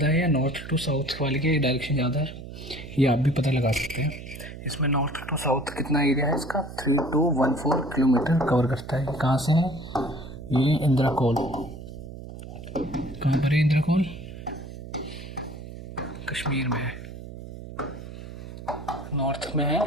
है या नॉर्थ टू साउथ वाले की डायरेक्शन ज़्यादा है, ये आप भी पता लगा सकते हैं। इसमें नॉर्थ टू साउथ कितना एरिया है इसका, 3214 किलोमीटर कवर करता है। कहाँ से है ये, इंद्राकोल। कहाँ पर है इंद्राकोल, कश्मीर में है, नॉर्थ में है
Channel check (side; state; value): right; noise; hum, 12 dB below the sound